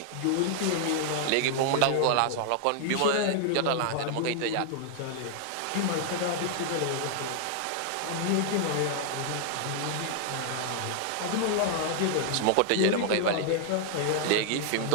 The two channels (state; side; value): different; both; correlation 0.00